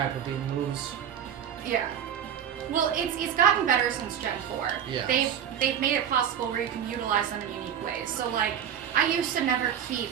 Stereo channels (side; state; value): left; quieter; 9.0 dB